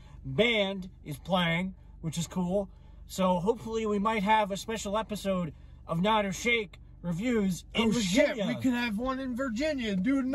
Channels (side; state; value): both; identical; correlation 1.00